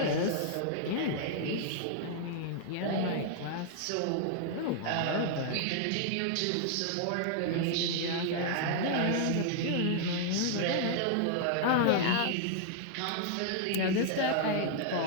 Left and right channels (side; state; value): both; different; correlation 0.00